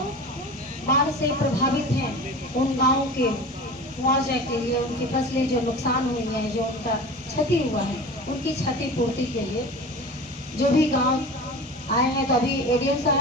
बाढ़ से प्रभावित हैं उन गाँव के मुआवजा के लिए, उनकी फसलें जो नुकसान हुई हैं, जो उनका क्षति हुआ है, उनकी क्षतिपूर्ति के लिए जो भी गांव आए हैं, तो अभी एडीएम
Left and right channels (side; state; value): both; normal; correlation 0.34